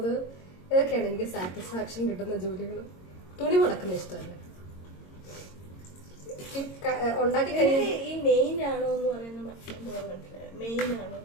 ഇതൊക്കെയാണ് എനിക്ക് സാറ്റിസ്ഫാക്ഷൻ കിട്ടുന്ന ജോലികൾ. തുണി മുടക്കുന്ന ഇഷ്ടമല്ല. ഉണ്ടാക്കി കഴിഞ്ഞാൽ ഈ മെയിൻ ആണോ എന്ന് പറയുന്നത് മെയിൻ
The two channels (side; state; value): right; late; 22 ms